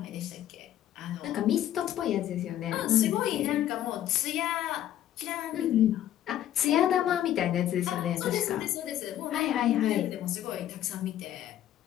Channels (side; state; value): right; quieter; 11.9 dB